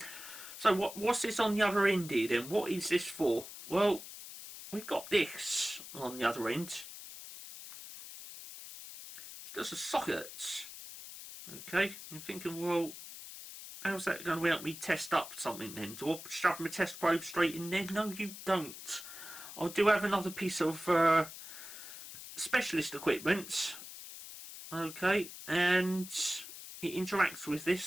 So what's this on the other end here then? What is this for? Well, we've got this on the other end. It's just a socket. Okay, I'm thinking, well, how's that going to help me test up something then? Do I shove my test probe straight in there? No, you don't. I do have another piece of specialist equipment, okay, and it interacts with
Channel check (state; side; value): noise; left; hiss, 12 dB below the sound